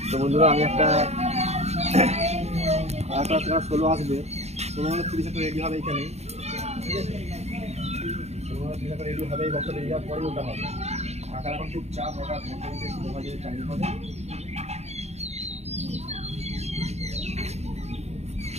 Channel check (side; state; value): left; late; 0.31 ms